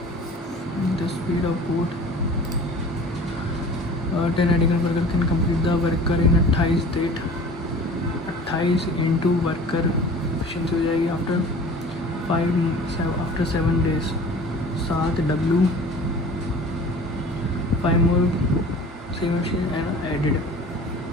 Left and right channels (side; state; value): both; normal; correlation 0.43